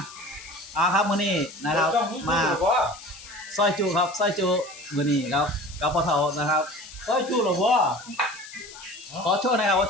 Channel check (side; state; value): left; noise; hiss, 17 dB below the sound